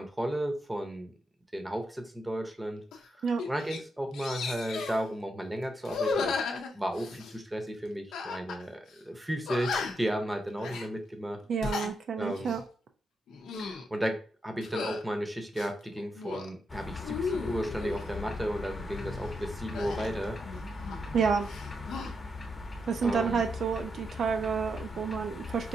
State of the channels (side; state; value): both; normal; correlation 0.82